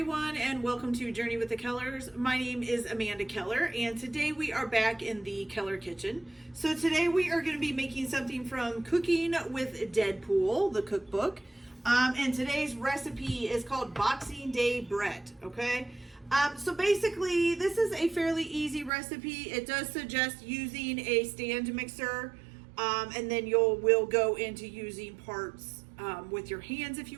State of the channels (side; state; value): left; drops out; at 18.9 s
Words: and welcome to Journey with the Kellers. My name is Amanda Keller, and today we are back in the Keller kitchen. So today we are going to be making something from Cooking with Deadpool, the cookbook. And today's recipe is called Boxing Day bread, okay? So basically, this is a fairly easy recipe. It does suggest using a stand mixer, and then we'll go into using parts with your hands if